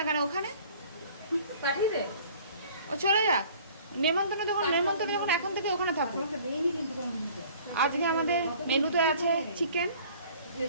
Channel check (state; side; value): inverted; both; correlation -0.51